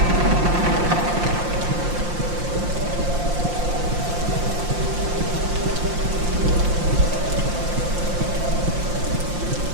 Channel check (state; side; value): late; left; 5.7 ms